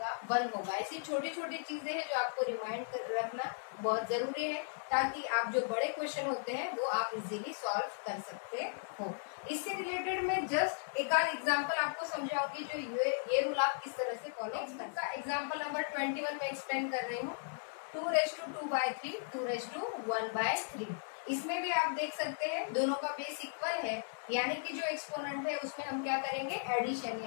1 होगा। ऐसी छोटी छोटी चीजें हैं जो आपको रिमाइंड कर रखना बहुत जरूरी है, ताकि आप जो बड़े क्वेश्चन होते हैं वो आप इजीली सॉल्व कर सकते हो। इससे रिलेटेड मैं जस्ट एक आध एग्जाम्पल आपको समझाऊंगी जो ये रूल आप किस तरह से फॉलो कर सकते हैं। एग्जाम्पल नंबर 21 में एक्सप्लेन कर रही हूँ। 2 रेस टू 2/3 2 रेस टू 1/3। इसमें भी आप देख सकते हैं दोनों का बेस इक्वल है, यानी कि जो एक्सपोनेंट है उसमें हम क्या करेंगे, एडिशन,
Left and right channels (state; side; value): silent; right; 53 dB below the other